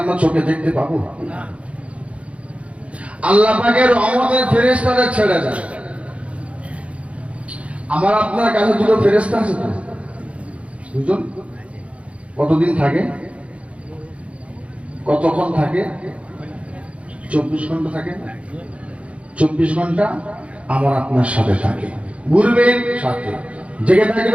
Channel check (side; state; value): left; late; 0.063 ms